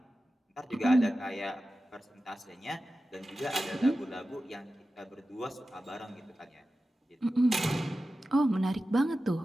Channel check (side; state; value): both; normal; correlation 0.94